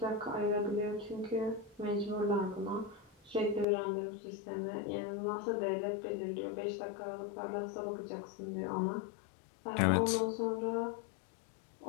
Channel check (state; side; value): drops out; right; at 3.7 s